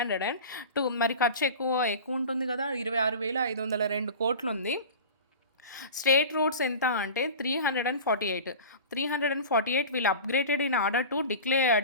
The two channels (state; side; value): inverted; both; correlation -0.34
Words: మరి ఖర్చు ఎక్కువ ఉంటుంది కదా, 26,502 కోట్లు ఉంది. స్టేట్ రోడ్స్ ఎంత అంటే 348. 348 will upgraded in order to